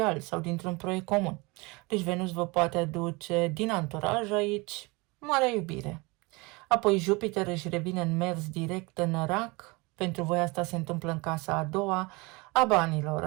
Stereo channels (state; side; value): quieter; left; 25.8 dB